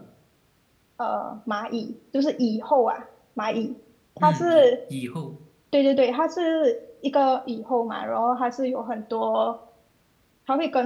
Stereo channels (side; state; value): both; identical; correlation 1.00